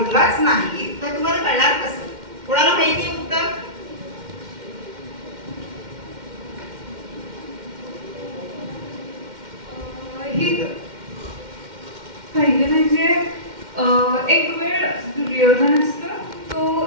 नाही तर तुम्हाला कळणार कसं? कोणाला माहिती आहे उत्तर? पहिले म्हणजे एक वेळ दुर्योधन असतो,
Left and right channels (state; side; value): late; left; 2.1 ms